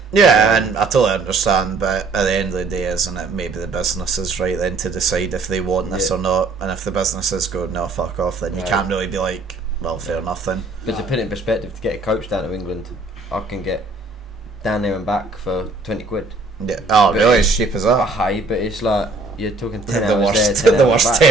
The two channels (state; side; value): quieter; left; 3.6 dB